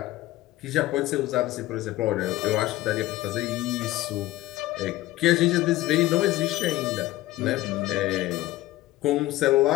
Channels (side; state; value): right; quieter; 16.7 dB